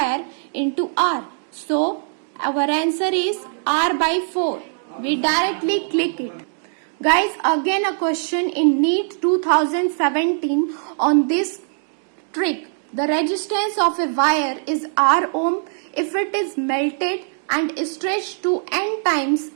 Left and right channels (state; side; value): silent; left; digital silence